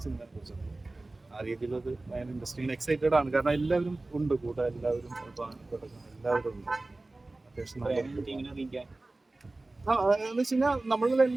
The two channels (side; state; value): left; quieter; 3.0 dB